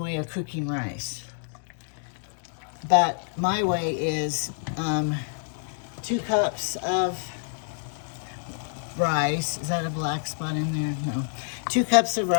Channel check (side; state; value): right; silent; digital silence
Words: of cooking rice. But my way is 2 cups of rice. Is that a black spot in there? No. 2 cups of